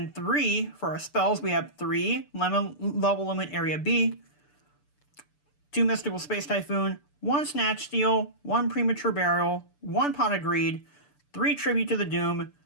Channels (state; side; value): late; right; 6.8 ms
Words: 3 for our spells, we have 3 Level Limit Area B, 2 Mystical Space Typhoon, 1 Snatch Steal, 1 Premature Burial, 1 Pot of Greed, 3 Tribute to the Doom,